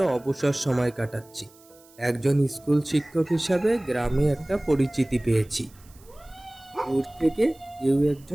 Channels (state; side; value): noise; right; hiss, 27 dB below the sound